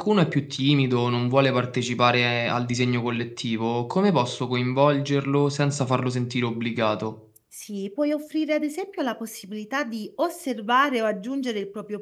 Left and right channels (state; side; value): identical; both; correlation 1.00